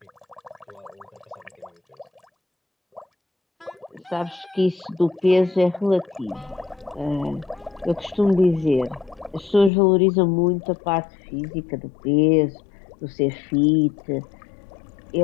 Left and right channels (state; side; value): drops out; right; at 9.7 s